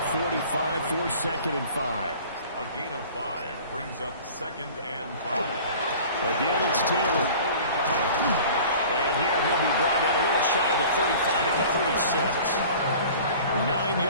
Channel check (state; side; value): inverted; both; correlation -0.44